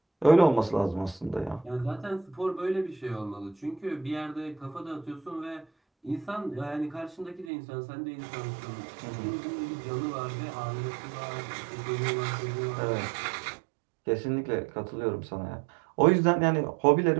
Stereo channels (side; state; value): left; drops out; at 7.5 s